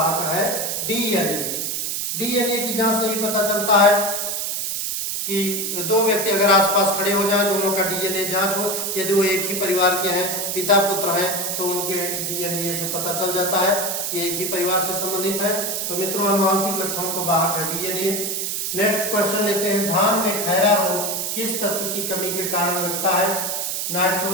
है डीएनए। डीएनए की जांच से ही पता चलता है कि 2 व्यक्ति अगर आसपास खड़े हो जाए, दोनों का डीएनए जांच हो, यदि वो एक ही परिवार के हैं, पिता पुत्र हैं, तो उनके डीएनए से पता चल जाता है कि एक ही परिवार से संबंधित है। तो मित्रों, आनुवांशिक लक्षणों को वाहक है डीएनए। नेक्स्ट क्वेश्चन लेते हैं। धान में खैरा रोग किस तत्व की कमी के कारण लगता है?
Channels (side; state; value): right; noise; hiss, 1 dB below the sound